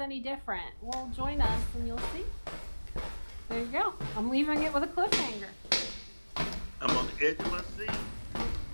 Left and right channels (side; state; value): both; inverted; correlation -1.00